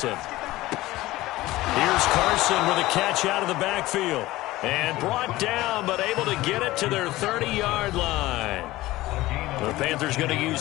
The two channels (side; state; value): right; quieter; 17.8 dB